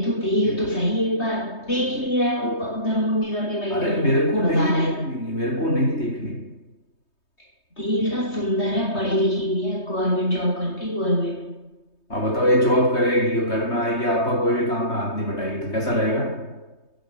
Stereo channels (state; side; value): late; right; 3.2 ms